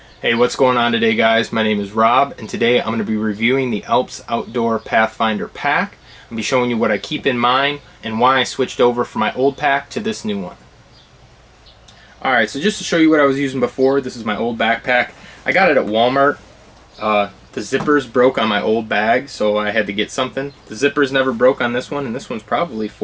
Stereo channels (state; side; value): identical; both; correlation 1.00